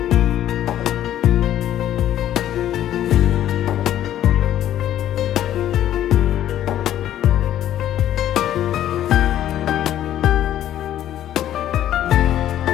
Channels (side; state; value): right; quieter; 11.9 dB